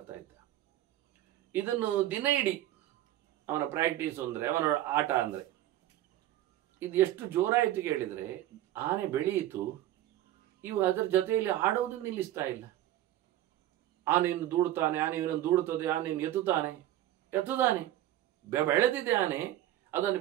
ಇದ್ದ. ಇದನ್ನು ದಿನ ಇಡೀ ಅವನ ಪ್ರಾಕ್ಟೀಸ್ ಅಂದರೆ, ಅವನ ಆಟ ಅಂದರೆ ಇದು ಎಷ್ಟು ಜೋರಾಯಿತು ಕೇಳಿದರೆ, ಆನೆ ಬೆಳೆಯಿತು, ಇವು ಅದರ ಜೊತೆಯಲ್ಲಿ ಆಡೋದನ್ನು ನಿಲ್ಲಿಸ್ತಾ ಇಲ್ಲ. ಆನೆಯನ್ನು ದೂಡುತ್ತಾನೆ, ಆನೆ ಇವನನ್ನು ದೂಡುತ್ತದೆ, ಆನೆಯನ್ನು ಎತ್ತುತ್ತಾನೆ, ಬೆಳೆದಿದೆ ಆನೆ. ಅದನ್ನು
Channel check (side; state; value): left; quieter; 13.8 dB